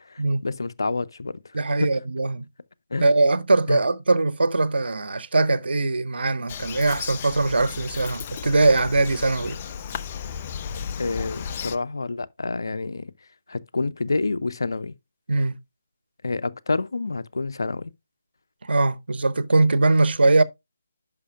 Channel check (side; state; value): both; inverted; correlation -0.93